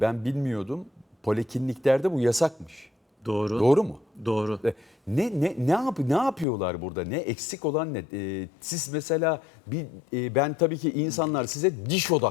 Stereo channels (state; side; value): drops out; right; at 6.5 s